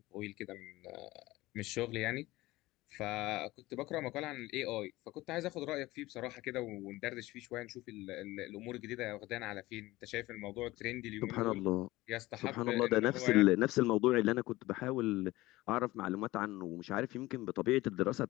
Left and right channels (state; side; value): quieter; right; 18.7 dB